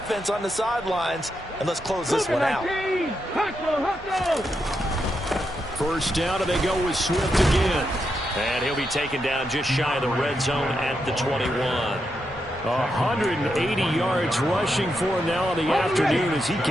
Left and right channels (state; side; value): normal; both; correlation 0.84